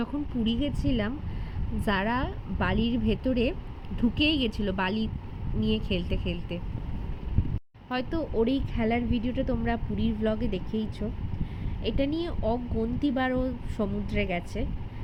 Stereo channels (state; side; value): identical; both; correlation 1.00